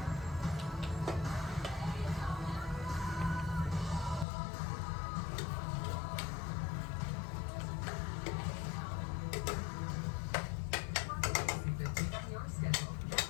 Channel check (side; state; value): right; drops out; at 4.2 s